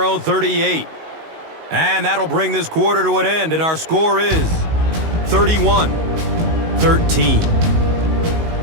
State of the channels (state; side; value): late; left; 19 ms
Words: own 38. And that'll bring this quarter to an end, and our score is 31-13.